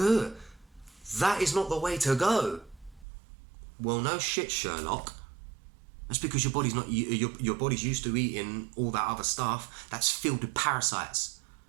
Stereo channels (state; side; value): drops out; left; at 3.1 s